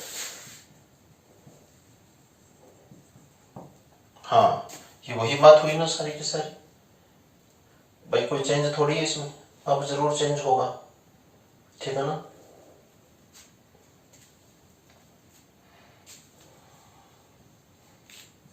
हाँ, ये वही बात हुई ना सारी की सारी। भाई कोई चेंज थोड़ी है इसमें, अब जरूर चेंज होगा, ठीक है ना।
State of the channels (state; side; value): identical; both; correlation 1.00